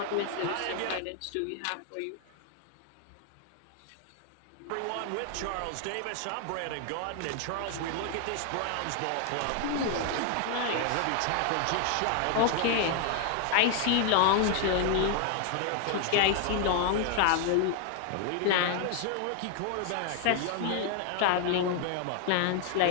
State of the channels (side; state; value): both; different; correlation 0.00